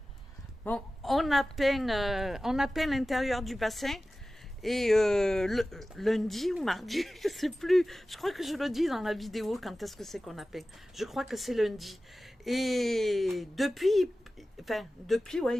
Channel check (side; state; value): both; normal; correlation 0.96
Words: Bon, on a peint l'intérieur du bassin. Et lundi ou mardi, je sais plus. Je crois que je le dis dans la vidéo quand est-ce que c'est qu'on a peint. Je crois que c'est lundi. Et depuis,